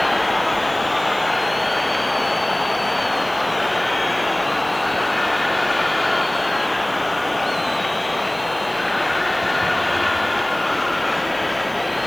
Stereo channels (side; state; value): right; noise; hiss, 21 dB below the sound